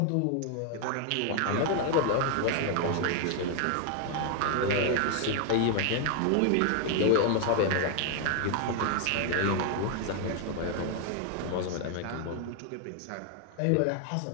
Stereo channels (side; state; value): both; different; correlation 0.00